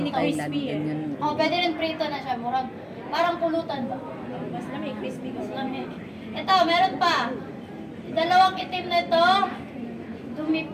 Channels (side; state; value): both; identical; correlation 1.00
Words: Ganyan. Oh, pwede rin prito na siya. Murag, parang pulutan ba? Mas lamig, crispy Mas kasi. lamig. Ito, meron pa. Dalawang itim na ito, dumi